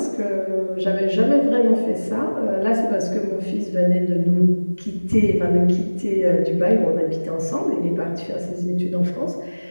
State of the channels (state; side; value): inverted; both; correlation -1.00